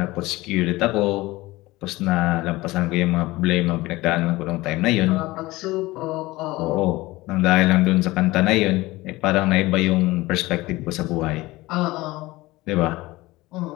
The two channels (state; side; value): quieter; right; 19.7 dB